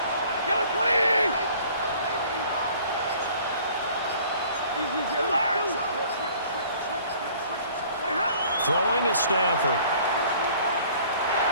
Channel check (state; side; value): inverted; both; correlation -0.53